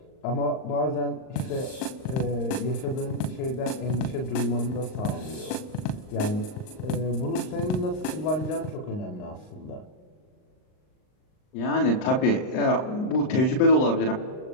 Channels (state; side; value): late; right; 39 ms